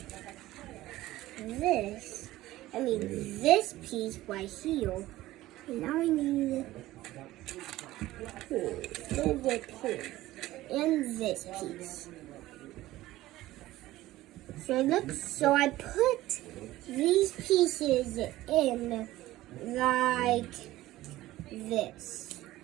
This piece right here. And now I need and this piece. So I put these pieces in like this.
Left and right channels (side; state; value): left; quieter; 16.3 dB